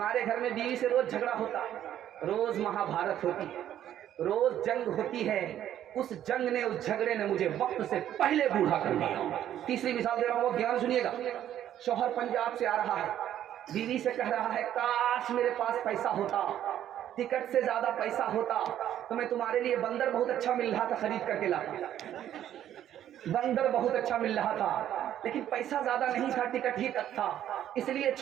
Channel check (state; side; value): quieter; left; 11.2 dB